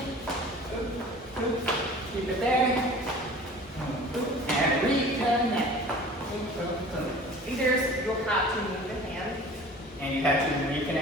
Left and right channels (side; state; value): both; normal; correlation 0.44